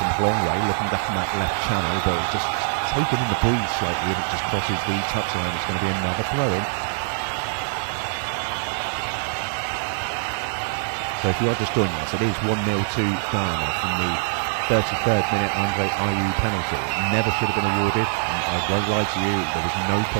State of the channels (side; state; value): left; silent; digital silence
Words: from Blongway, looking back in that left channel, but it's just taken in the breeze slightly, and it just crosses the touchline. It's going to be another throw-in. So if you are just joining us, it is 1-0 to Ghana from the 33rd minute Andre Ayew penalty. It never should have been awarded, and I won't lie to you, there was no